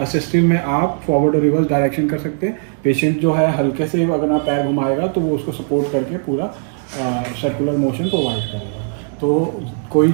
में आप फॉरवर्ड और रिवर्स डायरेक्शन कर सकते हैं। पेशेंट जो है हल्के से अगर आप पैर घुमाएगा तो वो उसको सपोर्ट करके पूरा सर्कुलर मोशन प्रोवाइड करेगा। तो कोई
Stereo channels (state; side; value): silent; left; digital silence